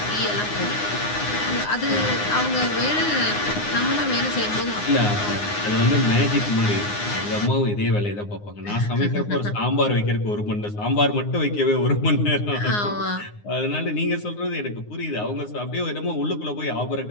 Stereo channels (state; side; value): late; right; 9.7 ms